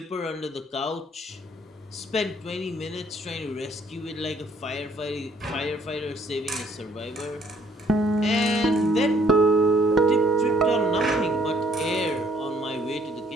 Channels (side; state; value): both; normal; correlation 0.63